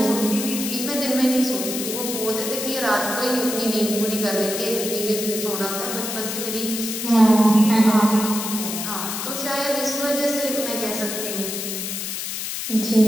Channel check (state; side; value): noise; left; hiss, 4 dB below the sound